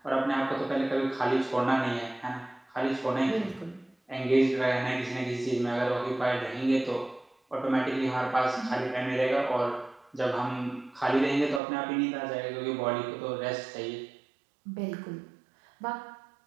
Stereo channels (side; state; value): left; drops out; at 11.6 s